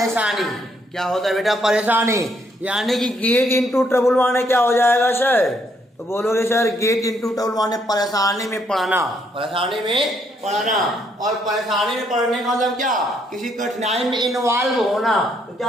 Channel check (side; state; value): both; normal; correlation 0.72